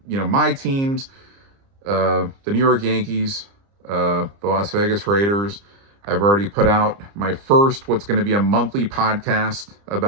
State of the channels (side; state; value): left; late; 30 ms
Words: You know, my teams, the New York Yankees, the Las Vegas Raiders. I've already put out my first, what's going to be a monthly podcast